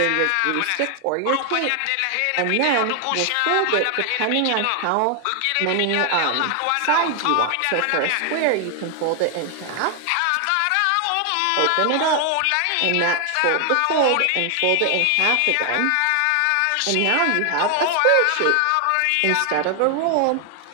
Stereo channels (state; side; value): different; both; correlation 0.00